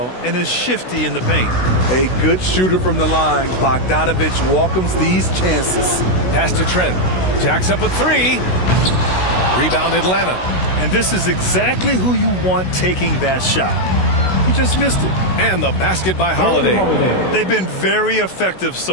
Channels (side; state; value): right; late; 16 ms